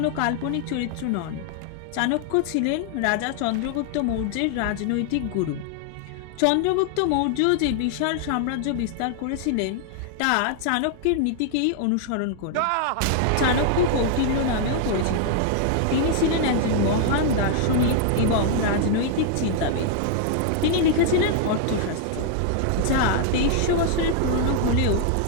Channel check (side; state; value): both; different; correlation 0.00